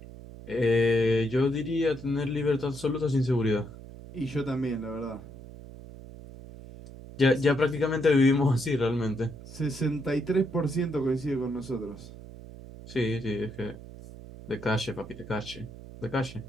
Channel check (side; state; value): right; noise; hum, 15 dB below the sound